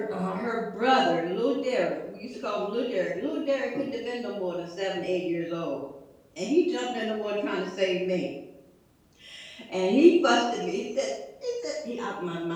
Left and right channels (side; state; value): both; identical; correlation 1.00